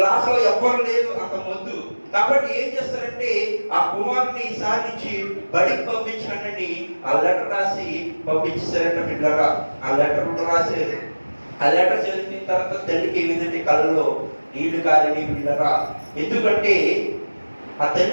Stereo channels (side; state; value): both; inverted; correlation -1.00